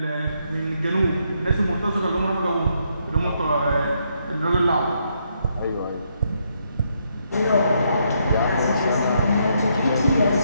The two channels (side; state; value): both; inverted; correlation -0.76